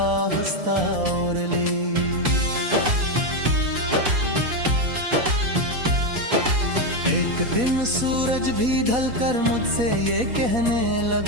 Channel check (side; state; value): left; late; 4.2 ms